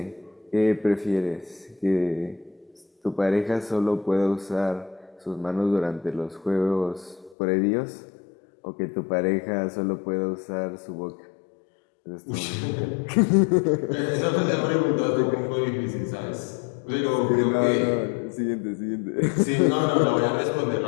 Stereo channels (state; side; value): drops out; right; at 7.4 s